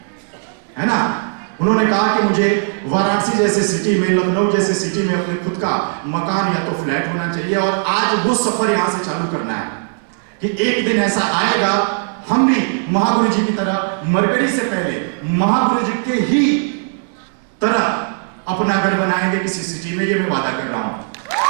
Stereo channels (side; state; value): left; silent; 60 dB below the other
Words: है ना। उन्होंने कहा कि मुझे वाराणसी जैसे सिटी में, लखनऊ जैसे सिटी में अपने खुद का मकान या तो फ्लैट होना चाहिए। और आज वो सफर यहां से चालू करना है कि एक दिन ऐसा आएगा हम भी महागुरु जी की तरह, मरकरी से पहले महागुरु जी के ही तरह अपना घर बनाएंगे किसी सिटी में। ये मैं वादा कर रहा हूं।